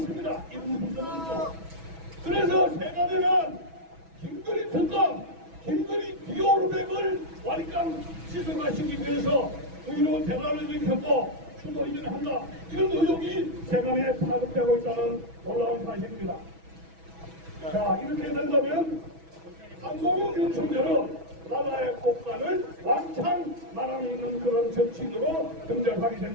그래서 세간에는 김건희 특검, 김건희 비오르백을 완강 시설화시키기 위해서 의료 대란을 일으켰고 수도 이전을 한다. 이런 의혹이 세간에 파급되고 있다는 놀라운 사실입니다. 자, 이렇게 된다면 한국은 윤석열은 나라의 국간을 왕창 말아먹는 그런 정치인으로 등장하게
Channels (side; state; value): left; late; 6.1 ms